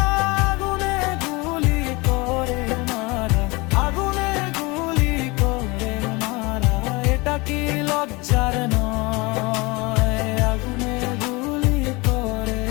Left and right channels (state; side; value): quieter; right; 25.1 dB